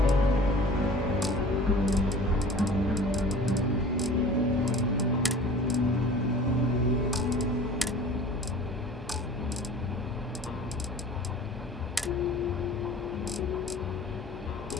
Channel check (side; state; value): both; normal; correlation 0.43